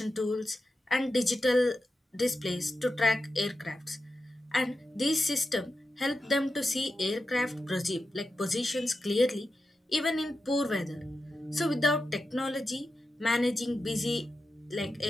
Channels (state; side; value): normal; both; correlation 0.90